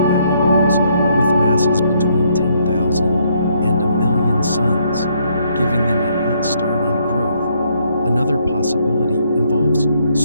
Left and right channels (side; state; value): both; inverted; correlation -0.71